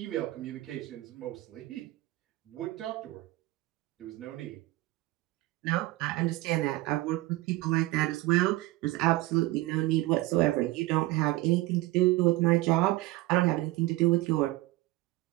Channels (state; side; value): quieter; left; 18.7 dB